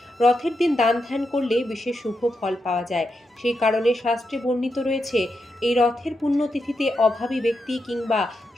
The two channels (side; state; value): both; normal; correlation 0.85